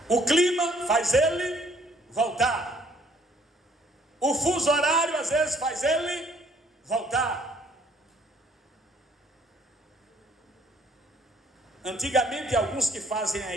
O clima faz ele voltar. O fuso horário às vezes faz ele voltar. Antigamente, alguns que fazem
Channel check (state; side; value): normal; both; correlation 0.62